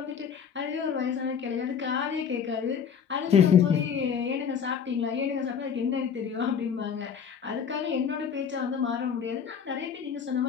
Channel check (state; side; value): quieter; right; 7.2 dB